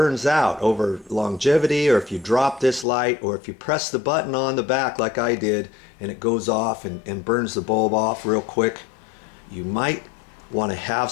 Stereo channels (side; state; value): right; drops out; at 2.9 s